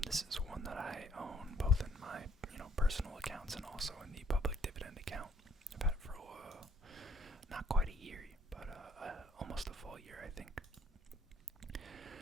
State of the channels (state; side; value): normal; both; correlation 0.65